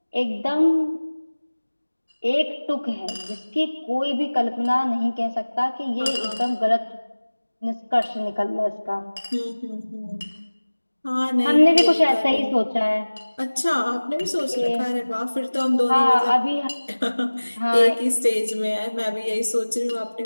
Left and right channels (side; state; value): both; inverted; correlation -1.00